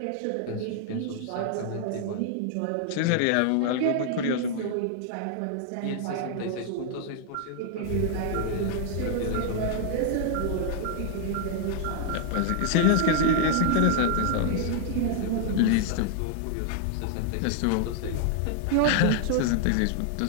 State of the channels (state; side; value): different; both; correlation 0.00